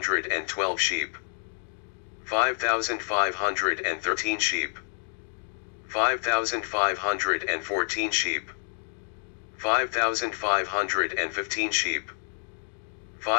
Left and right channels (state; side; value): silent; right; digital silence